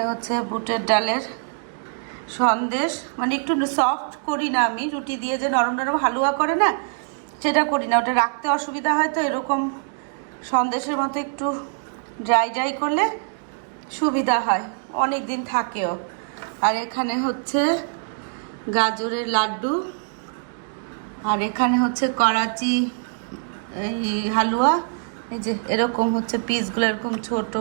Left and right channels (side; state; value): left; silent; 61 dB below the other